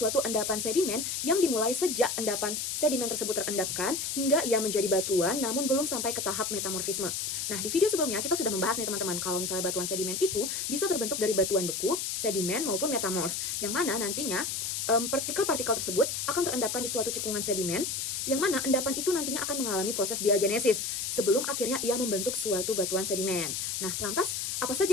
endapan sedimen yang dimulai sejak endapan sedimen tersebut terendapkan hingga ia menjadi batuan namun belum sampai ke tahap metamorfisme. Nah, di video sebelumnya kita sudah membahas nih teman-teman, kalau misalnya batuan sedimen itu bisa terbentuk dari batuan beku, sedimen, maupun metamorf, yang mana nantinya partikel-partikel tersebut akan terendapkan di suatu cekungan sedimen, yang mana endapan itu nantinya akan mengalami proses diagenesis sebelum akhirnya ia membentuk suatu batuan sedimen. Nah, lantas apa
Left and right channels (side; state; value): left; noise; hiss, 2 dB below the sound